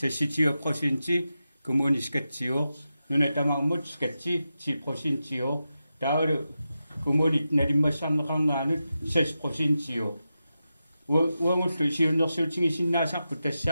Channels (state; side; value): inverted; both; correlation -0.90